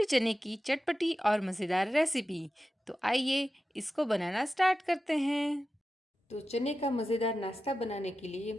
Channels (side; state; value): both; normal; correlation 0.93